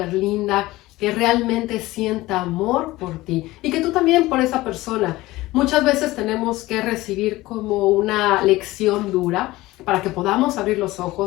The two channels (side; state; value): right; quieter; 18.5 dB